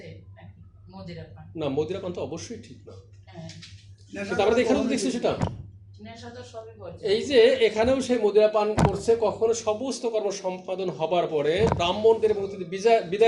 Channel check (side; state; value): both; identical; correlation 1.00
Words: না, মদিরা পান তো অবশ্যই ঠিক না, আমরা এখানেও দেখছি সেটা। এই যে এখানেও সেই মদিরা পান করছে, কখনো সমস্ত কর্ম সম্পাদন হবার পরে ব্রাহ্মণদের